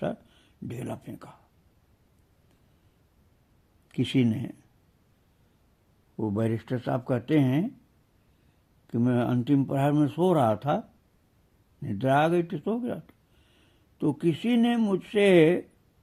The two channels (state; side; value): identical; both; correlation 1.00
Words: ढेला फेंका। किसी ने, वो बैरिस्टर साहब कहते हैं कि मैं अंतिम प्रहर में सो रहा था, निद्रा आ गई थी, सो गया था, तो किसी ने मुझसे